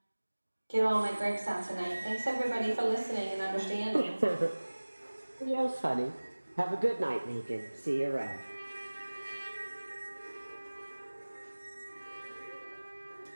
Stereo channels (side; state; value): both; inverted; correlation -1.00